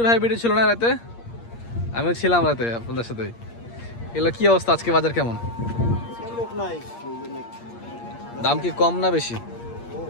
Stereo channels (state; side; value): late; right; 8.6 ms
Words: ভাই ভিডিও ছিল না রাতে? আমিও ছিলাম রাতে আপনাদের সাথে। এগুলো কি অবস্থা আজকে, বাজার কেমন? দাম কি কম না বেশি?